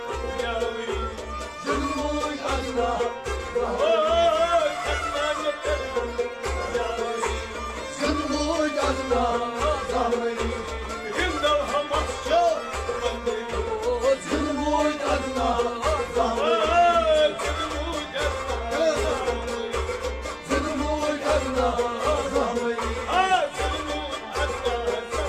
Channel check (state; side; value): identical; both; correlation 1.00